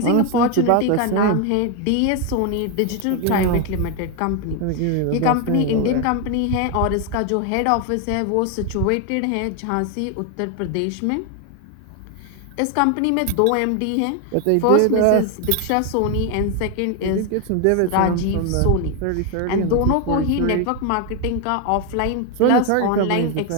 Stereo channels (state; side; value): different; both; correlation 0.01